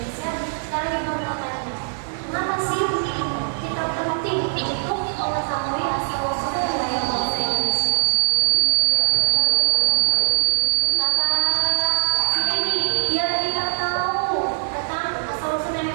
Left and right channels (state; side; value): silent; left; 61 dB below the other